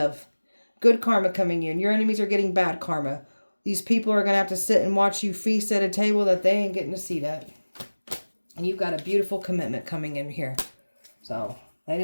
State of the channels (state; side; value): inverted; both; correlation -1.00